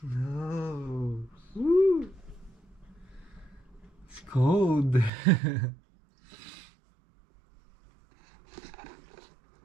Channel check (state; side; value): drops out; left; at 5.1 s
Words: Woo! It's cold.